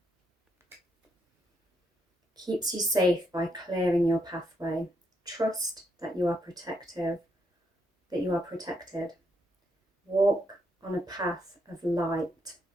Keeps you safe by clearing your pathway. Trust that you are protected. Walk on a path of light.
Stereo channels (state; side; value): normal; both; correlation 0.78